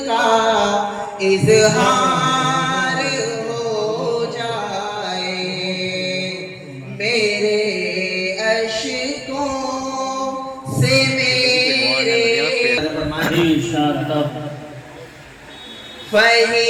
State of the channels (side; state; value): both; identical; correlation 1.00